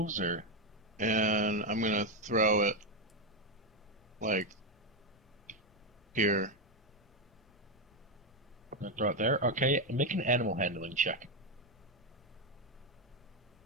or And I'm gonna throw it like here. gonna throw it there? Okay. Make an animal handling check.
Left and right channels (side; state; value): left; noise; rumble, 28 dB below the sound